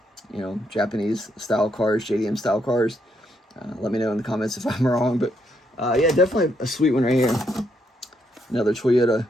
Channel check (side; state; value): both; normal; correlation 0.76